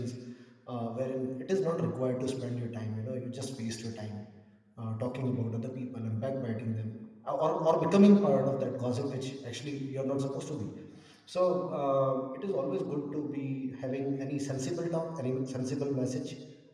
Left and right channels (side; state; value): both; identical; correlation 1.00